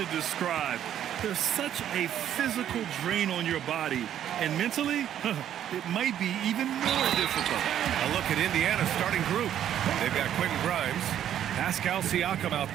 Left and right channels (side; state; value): left; quieter; 10.6 dB